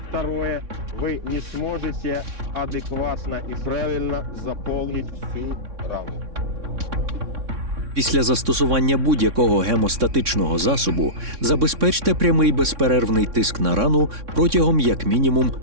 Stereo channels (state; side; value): late; left; 3.6 ms